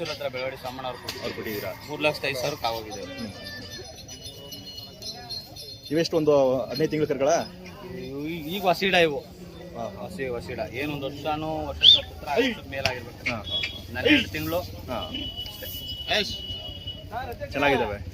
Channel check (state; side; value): identical; both; correlation 1.00